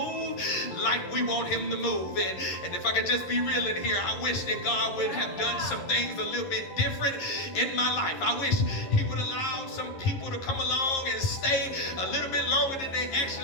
like we want him to move. And if I could just be real in here, I wish that God would have done some things a little bit different in my life. I wish he would allow some people to come along and stay a little bit longer than they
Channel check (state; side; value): late; right; 11 ms